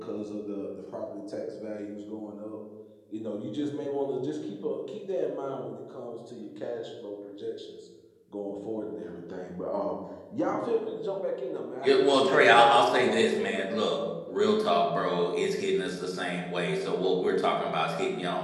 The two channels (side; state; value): both; identical; correlation 1.00